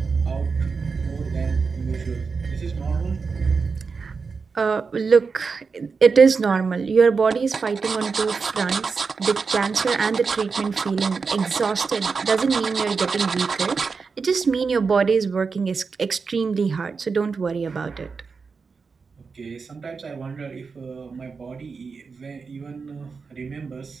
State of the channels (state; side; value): quieter; left; 5.0 dB